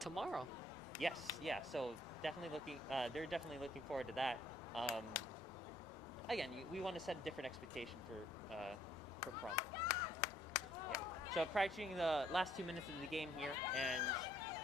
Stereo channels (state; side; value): normal; both; correlation 0.65